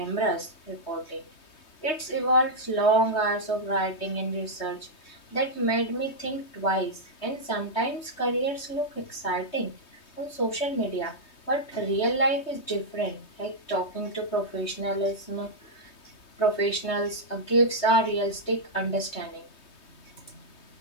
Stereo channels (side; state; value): right; late; 3.2 ms